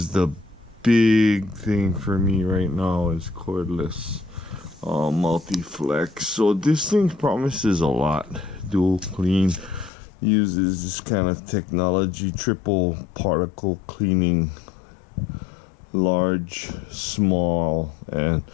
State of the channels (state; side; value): drops out; right; at 9.9 s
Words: the big thing for me right now, is cordless multi-flex. So this thing promises a lot. Dual clean, uses this kind of technology, triple particle cleaning, large, small, and